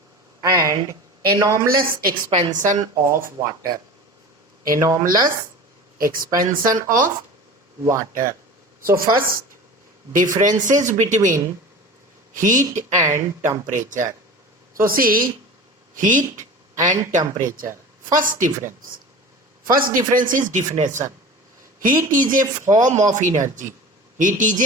and anomalous expansion of water. Anomalous expansion of water. So first, differences between heat and temperature. So see, heat and temperature. First difference is definition. Heat is a form of energy. Heat is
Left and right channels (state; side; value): normal; both; correlation 0.35